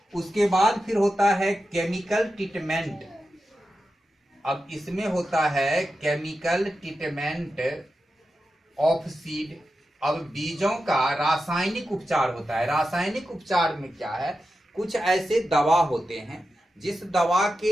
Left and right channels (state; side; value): normal; both; correlation 0.91